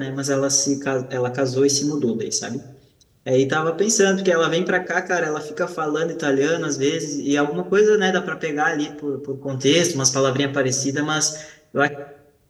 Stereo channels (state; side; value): identical; both; correlation 1.00